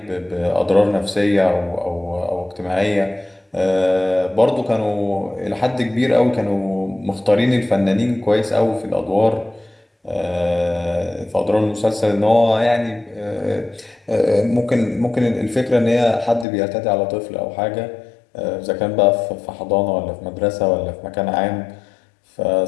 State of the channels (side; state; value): right; drops out; at 16.4 s